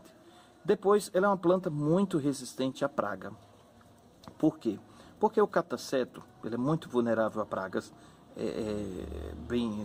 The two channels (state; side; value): identical; both; correlation 1.00